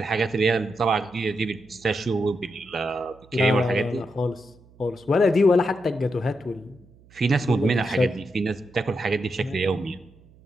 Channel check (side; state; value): right; noise; hum, 27 dB below the sound